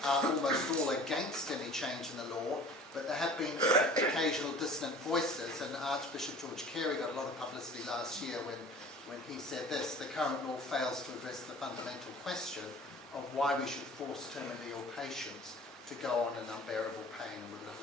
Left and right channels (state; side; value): normal; both; correlation 0.45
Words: are almost all against any change in the law, but there have been occasional dissonant voices, and Archbishop George Carey got a lot of publicity last year when he said this: the current law fails to address the fundamental question of why we should force terminally ill patients to go on in unbearable pain and with